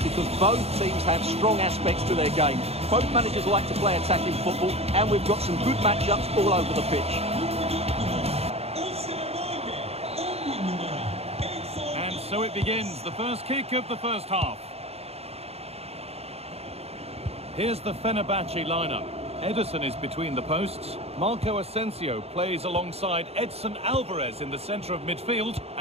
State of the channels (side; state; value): left; late; 0.30 ms